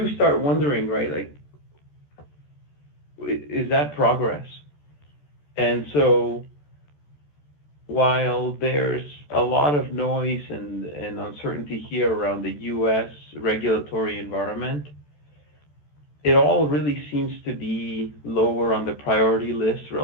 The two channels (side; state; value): right; late; 14 ms